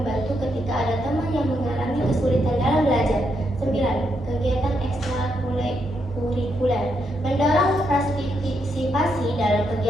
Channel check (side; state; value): both; normal; correlation 0.80